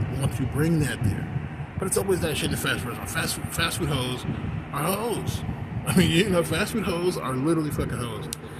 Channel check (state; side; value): identical; both; correlation 1.00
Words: want to bring that there. But it's always that shit in the fast food. Fast food hoes are hoes. I mean, fast food hoes are literally fucking hoes.